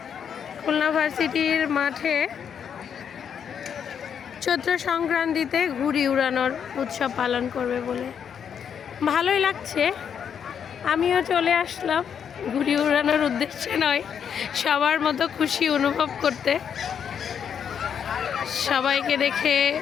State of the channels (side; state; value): right; quieter; 7.8 dB